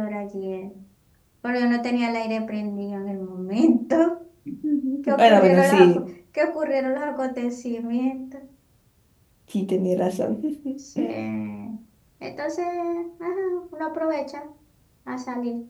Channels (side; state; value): both; identical; correlation 1.00